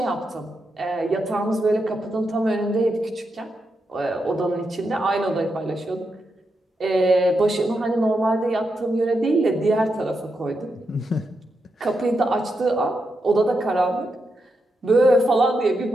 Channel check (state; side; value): normal; both; correlation 0.85